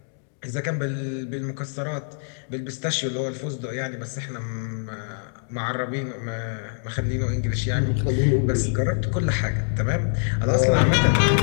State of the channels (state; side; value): silent; right; digital silence